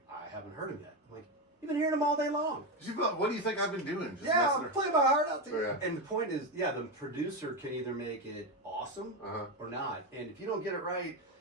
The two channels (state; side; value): normal; both; correlation 0.13